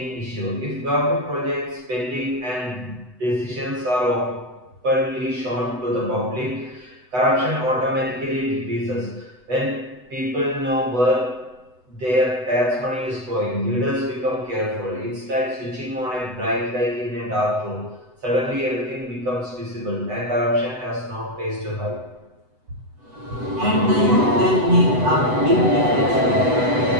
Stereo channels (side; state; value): left; late; 8.0 ms